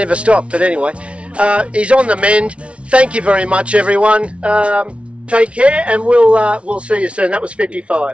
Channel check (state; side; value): late; left; 0.061 ms